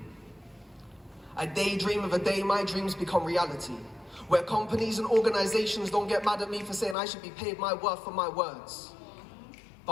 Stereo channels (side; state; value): right; drops out; at 7.0 s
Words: I daydream of a day my dreams become reality, where companies and organizations don't get mad at me for saying I should be paid my worth for my words.